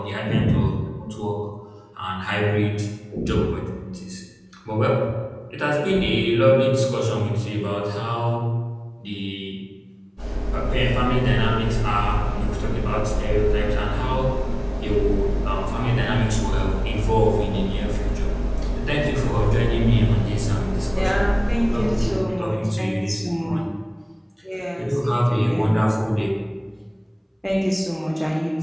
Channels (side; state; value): both; identical; correlation 1.00